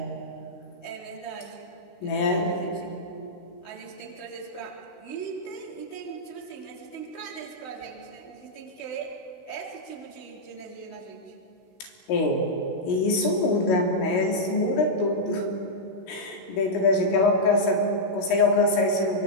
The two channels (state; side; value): late; right; 16 ms